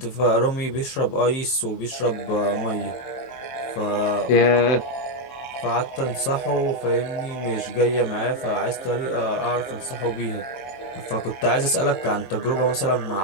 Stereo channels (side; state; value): right; late; 23 ms